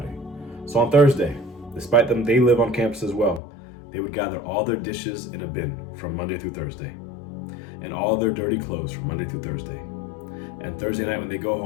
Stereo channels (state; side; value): drops out; right; at 3.4 s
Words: So on Thursday, despite them, they live on campus as well, they would gather all their dishes in a bin from Monday through Thursday, and all their dirty clothes from Monday through Thursday. And Thursday night when they go